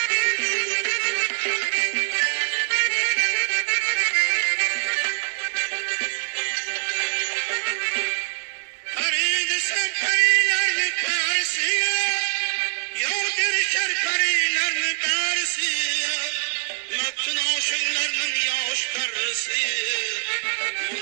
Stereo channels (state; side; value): silent; left; 63 dB below the other